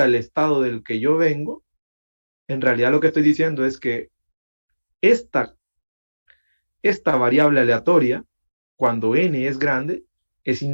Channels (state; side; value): inverted; both; correlation -1.00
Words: el estado del que yo vengo, en realidad lo que estoy diciendo es que esta, esta variable aleatoria, cuando n es grande, es